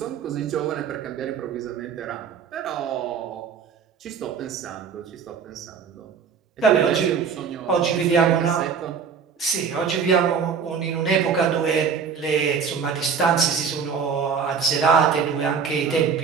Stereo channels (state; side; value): quieter; left; 6.3 dB